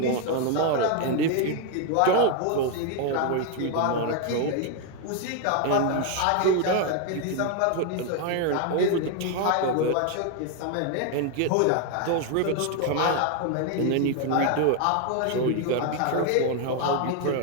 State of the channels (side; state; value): both; different; correlation 0.01